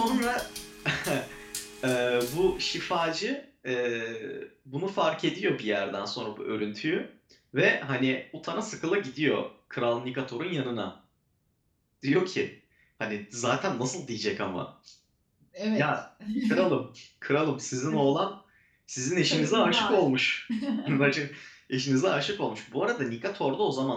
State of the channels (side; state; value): both; identical; correlation 1.00